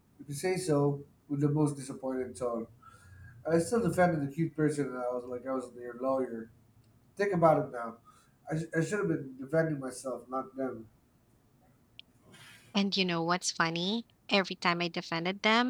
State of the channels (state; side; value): identical; both; correlation 1.00